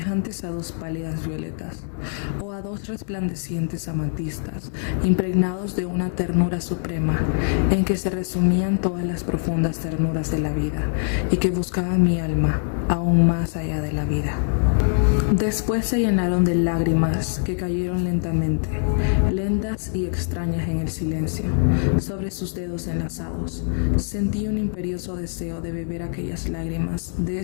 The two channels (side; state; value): right; silent; 60 dB below the other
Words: a dos pálidas violetas, o a dos resplandecientes amatistas, impregnados de una ternura suprema, en que se resumían todas las profundas ternuras de la vida, y que buscaban mi alma, aún más allá de la vida. Después se llenaron de lágrimas que cayeron lentamente, lentas y extrañas en el silencio, sobre sus dedos enlazados. Sentí un imperioso deseo de beber aquellas lágrimas, de